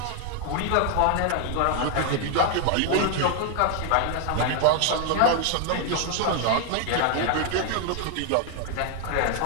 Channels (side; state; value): both; different; correlation 0.00